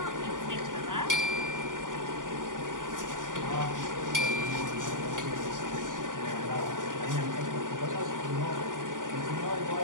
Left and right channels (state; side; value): late; left; 0.88 ms